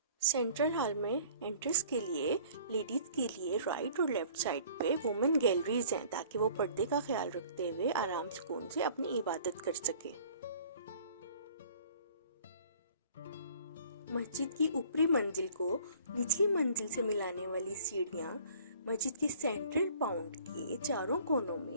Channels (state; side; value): inverted; both; correlation -0.52